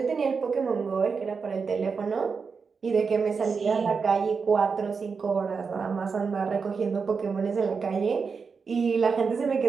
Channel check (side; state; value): left; quieter; 5.3 dB